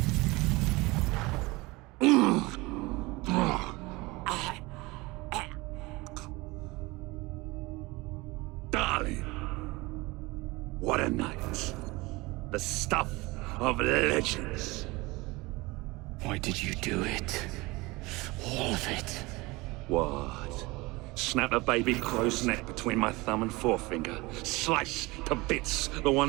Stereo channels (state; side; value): quieter; left; 22.8 dB